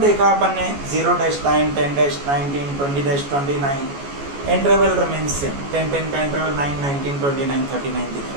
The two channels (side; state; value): left; late; 14 ms